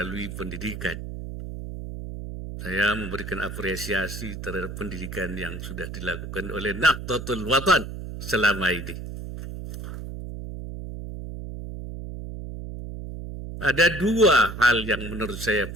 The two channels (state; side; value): noise; right; hum, 8 dB below the sound